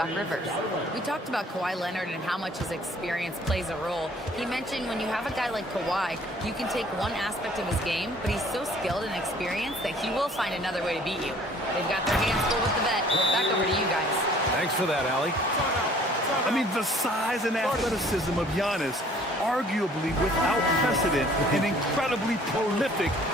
Rivers. We talked about Kawhi Leonard and how much his experience plays a role. He mentioned when you have a guy like Kawhi, you can take one aspect of his game, but he's so skilled and experienced that he will find another way to beat you. They've got their hands full with the vet. Back over to you guys. Thanks for that, Allie. I mean, the size and athleticism of Giannis, arguably without precedent, an incredibly prolific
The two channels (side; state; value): both; normal; correlation 0.55